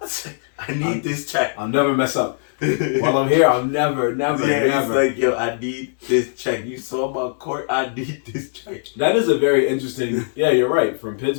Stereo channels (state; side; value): silent; right; digital silence